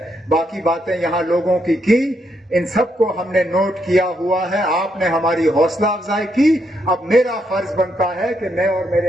बाकी बातें यहाँ लोगों की, इन सबको हमने नोट किया हुआ है। आपने हमारी हौसला अफजाई की। अब मेरा फर्ज बनता है कि मैं और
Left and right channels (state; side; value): normal; both; correlation 0.77